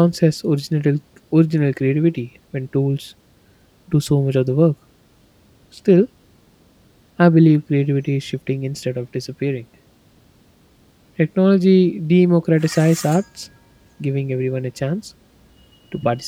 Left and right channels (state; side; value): identical; both; correlation 1.00